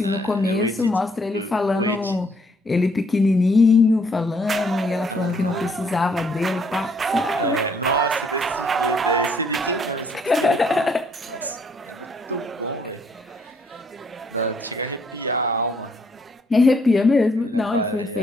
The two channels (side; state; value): both; normal; correlation 0.67